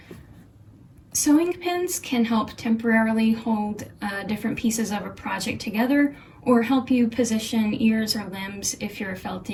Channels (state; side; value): identical; both; correlation 1.00